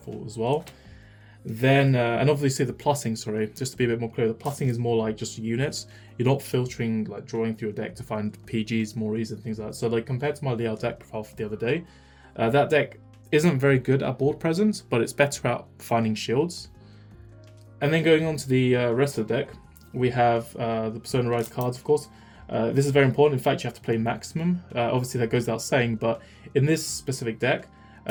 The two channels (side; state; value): both; identical; correlation 1.00